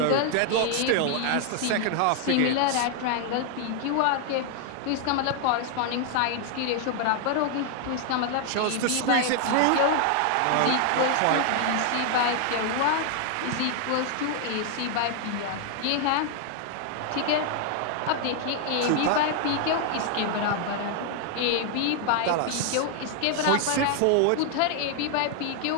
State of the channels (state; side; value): different; both; correlation 0.00